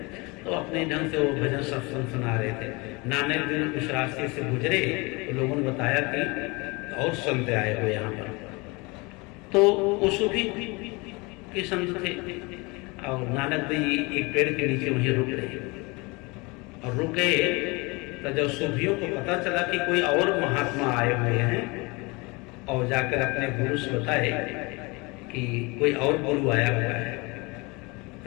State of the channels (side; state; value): right; quieter; 26.5 dB